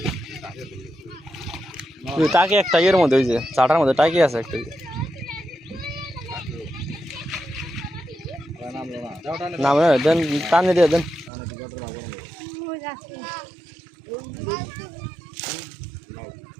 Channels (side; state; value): left; drops out; at 11.3 s